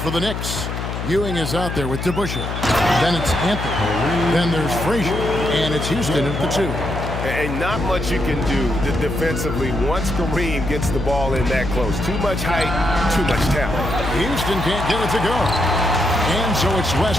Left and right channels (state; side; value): noise; left; hum, 4 dB below the sound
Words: the Knicks. Ewing is out there with DeBusschere. Then it's Anthony. Then there's Frazier. And it's Houston at the 2. And not much you can do defensively once Kareem gets the ball in that close. Too much height, too much talent. Houston can't get it to go. And so it's West